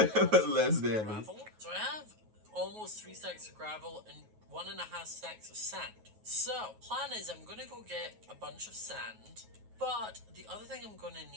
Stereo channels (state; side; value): late; left; 9.3 ms